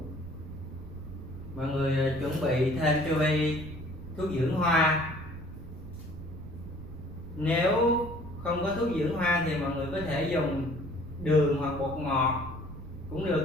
Mọi người chuẩn bị thêm cho Bi thuốc dưỡng hoa. Nếu không có thuốc dưỡng hoa thì mọi người có thể dùng đường hoặc bột ngọt cũng được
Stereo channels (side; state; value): right; noise; rumble, 14 dB below the sound